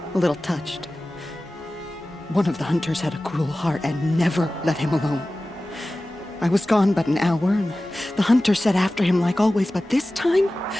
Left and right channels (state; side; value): normal; both; correlation 0.96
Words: A little touched. One of the hunters had a cruel heart and never let him alone. I was gone but an hour, and the hunter set after him like always, but this time,